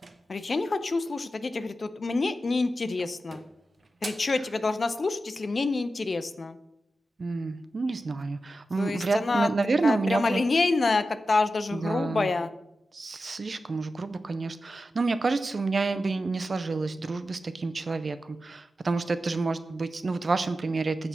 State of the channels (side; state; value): both; normal; correlation 0.91